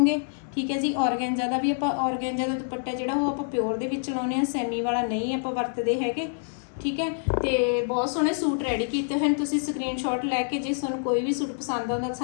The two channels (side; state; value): right; silent; digital silence